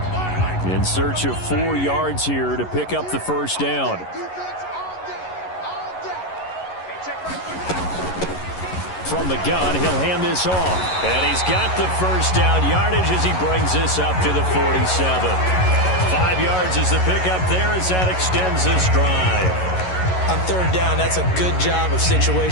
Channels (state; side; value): late; right; 11 ms